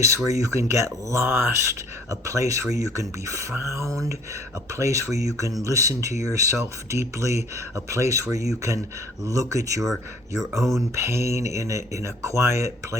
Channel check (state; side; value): normal; both; correlation 0.56